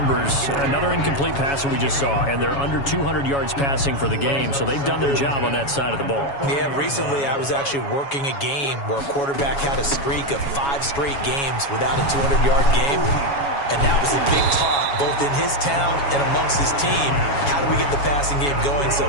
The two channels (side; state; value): right; late; 7.2 ms